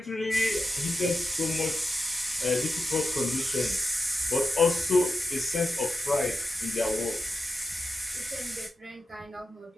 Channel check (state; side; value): normal; both; correlation 0.89